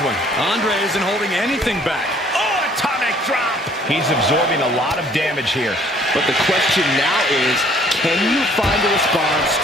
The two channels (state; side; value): normal; both; correlation 0.59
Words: Andre isn't holding anything back. Oh, atomic drop. He's absorbing a lot of damage here. But the question now is, can you find a response